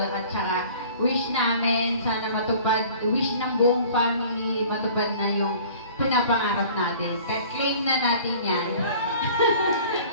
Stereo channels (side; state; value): both; inverted; correlation -0.47